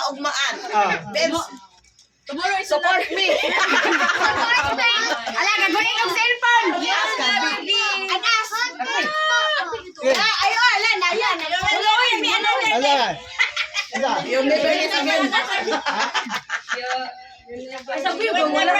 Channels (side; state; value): both; identical; correlation 1.00